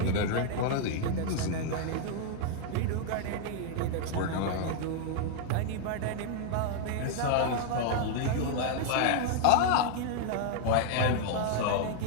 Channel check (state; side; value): different; both; correlation 0.00